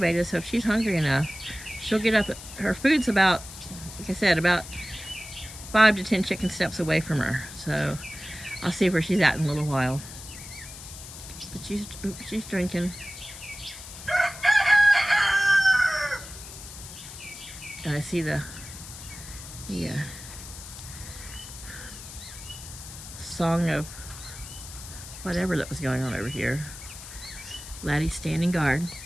so if she's hungry enough, she'll get up. Her food's about, like I said, about 5 to 10 chicken steps away from her. So I'll see where she's at in a little while. But she's drinking. And I see the song of whatever that was going on over here. Laddie's standing guard.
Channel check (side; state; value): left; noise; hiss, 13 dB below the sound